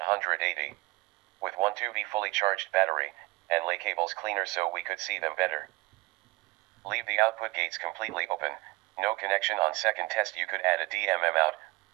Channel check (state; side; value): quieter; left; 22.1 dB